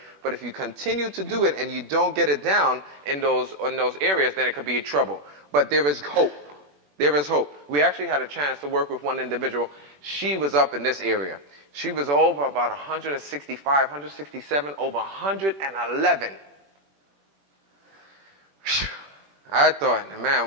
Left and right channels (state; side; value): late; left; 21 ms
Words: But if you continue to do it and you don't get it down in those areas, then it could be trouble. But there is hope. There is hope. We actually had a chance to work with one individual. She was up in this area. She was over about 165, 167, over 111. I thought,